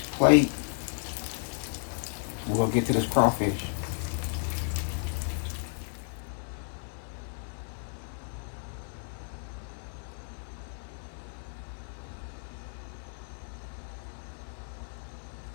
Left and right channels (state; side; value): silent; right; 56 dB below the other